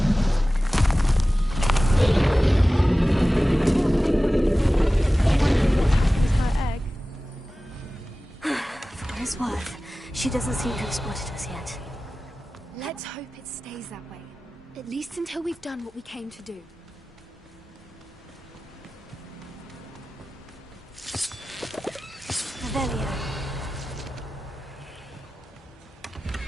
She doesn't seem to have spotted us yet. Let's hope it stays that way. At least until we've done what we came to do. Revelio.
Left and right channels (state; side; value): normal; both; correlation 0.96